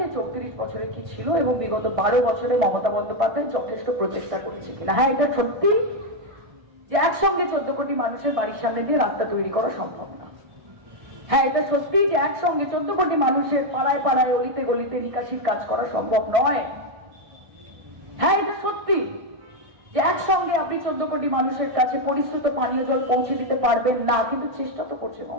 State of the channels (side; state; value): left; late; 1.6 ms